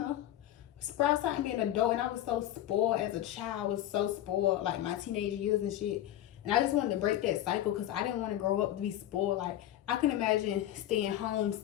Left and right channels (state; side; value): quieter; right; 12.8 dB